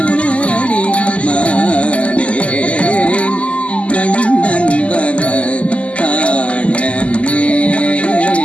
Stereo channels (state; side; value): late; right; 0.061 ms